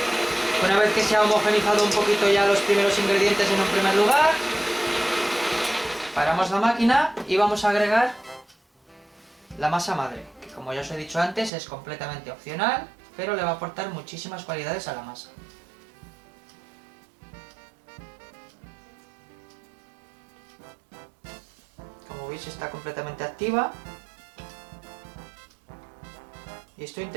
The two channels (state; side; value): drops out; left; at 11.5 s